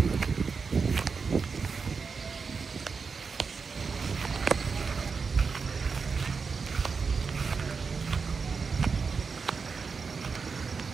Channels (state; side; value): quieter; left; 5.1 dB